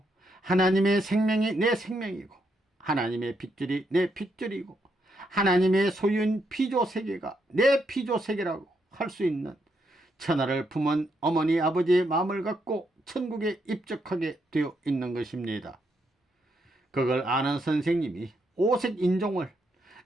하나님의 생명이 내 생명이고 하나님의 핏줄이 내 핏줄이고 하나님의 소유인 피조세계가 내 피조세계라고 할 수 있는 천하를 품은 어머니 아버지의 마음을 갖고 천국에 입적하게 되어 있는 것입니다. 그걸 아는 선생님이 오색 인종을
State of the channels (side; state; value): both; normal; correlation 0.78